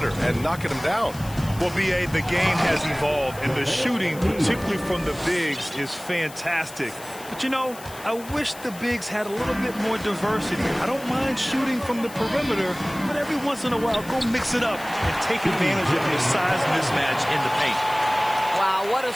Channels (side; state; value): left; noise; hiss, 17 dB below the sound